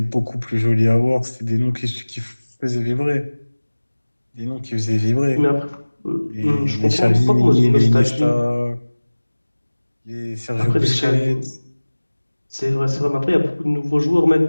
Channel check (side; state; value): both; inverted; correlation -1.00